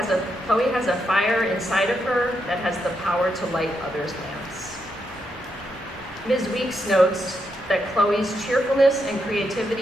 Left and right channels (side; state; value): both; normal; correlation 0.82